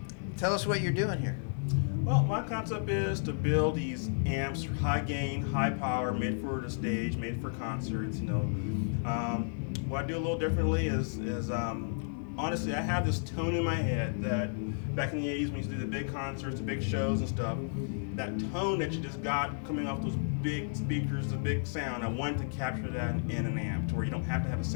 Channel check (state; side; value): silent; right; digital silence